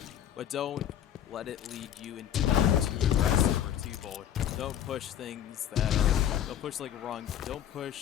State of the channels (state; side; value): quieter; right; 10.2 dB